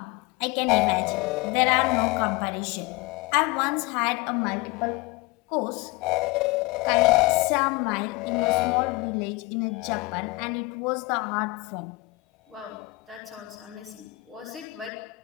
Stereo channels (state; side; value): quieter; right; 23.0 dB